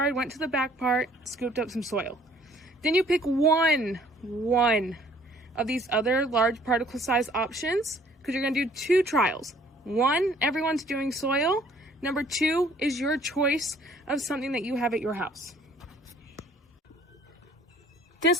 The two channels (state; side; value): normal; both; correlation 0.57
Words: went to the back part, scooped up some soil. Then you pick one of these other large particle size options, because you're going to do 2 trials. 1, everyone's doing soil. Number 2 is your choice of something that you have at your house.